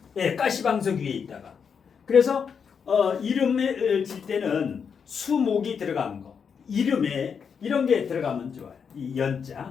예, 가시방석 위에 있다가. 그래서 이름을 질 때는 수목이 들어간 거. 이름에 이런 게 들어가면 좋아요. 이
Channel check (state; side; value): quieter; right; 6.6 dB